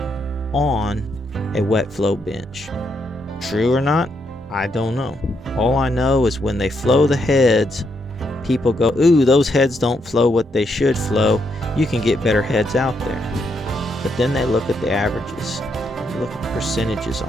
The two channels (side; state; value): both; normal; correlation 0.78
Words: on a wet flow bench. True or not, I don't know. All I know is when they flow the heads, people go, ooh, those heads don't flow what they should flow. You can get better heads out there. But then they look at the averages. Look at the percentages